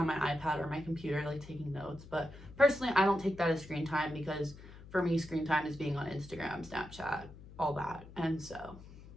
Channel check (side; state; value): left; noise; hum, 17 dB below the sound